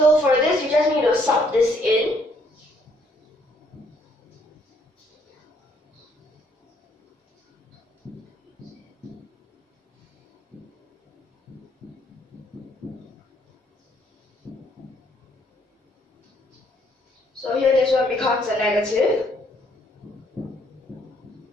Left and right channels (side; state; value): both; normal; correlation 0.67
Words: for this, you just need to sub this in. So here this one becomes a negative.